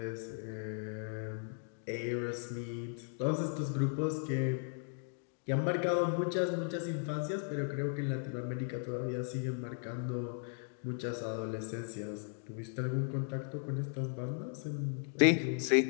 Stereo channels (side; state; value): right; silent; 53 dB below the other